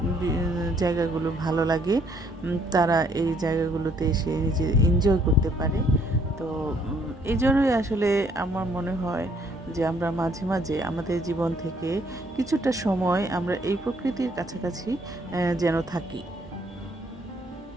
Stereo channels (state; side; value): normal; both; correlation 0.66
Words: জায়গাগুলো ভালো লাগে। তারা এই জায়গাগুলোতে এসে নিজে এনজয় করতে পারে। তো এই জন্যই আসলে আমার মনে হয় যে আমরা মাঝে মাঝে আমাদের জীবন থেকে কিছুটা সময় আমরা এই প্রকৃতির কাছাকাছি যেন থাকি।